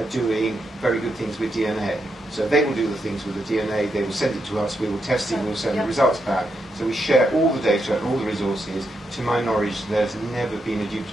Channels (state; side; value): normal; both; correlation 0.82